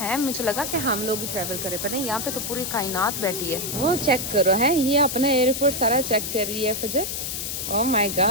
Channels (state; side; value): noise; left; hiss, 4 dB below the sound